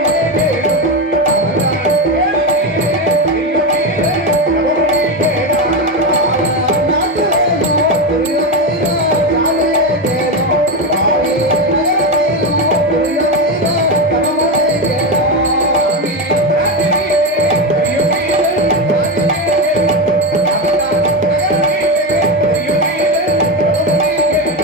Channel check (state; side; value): normal; both; correlation 0.13